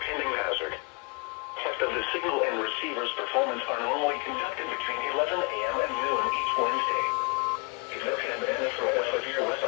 hazard. Tests of the signal and receiver's performance are normally conducted between 11 a.m. and noon each Wednesday. If there have been a threat of severe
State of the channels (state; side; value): quieter; right; 32.1 dB